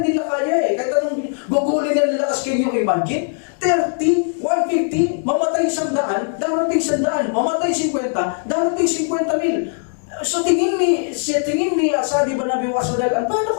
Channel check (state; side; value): silent; right; 66 dB below the other